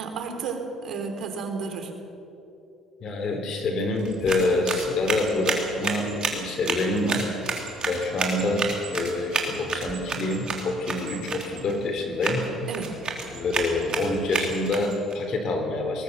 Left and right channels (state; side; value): normal; both; correlation 0.62